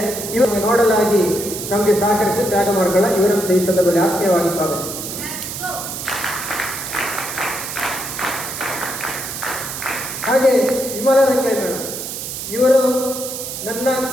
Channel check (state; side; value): noise; right; hiss, 7 dB below the sound